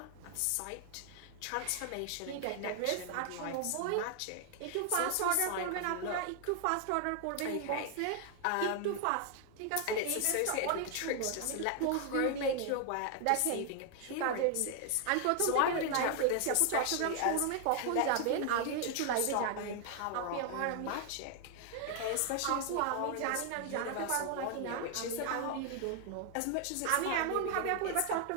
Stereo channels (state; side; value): different; both; correlation 0.00